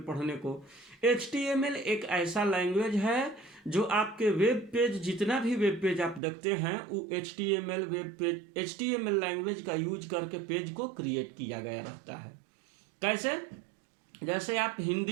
पढ़ने को। HTML एक ऐसा लैंग्वेज है जो आपके वेब पेज, जितना भी वेब पेज आप देखते हैं वो HTML web page, HTML language का यूज करके पेज को क्रिएट किया गया रहता है। कैसे? जैसे आप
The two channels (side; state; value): left; drops out; at 6.2 s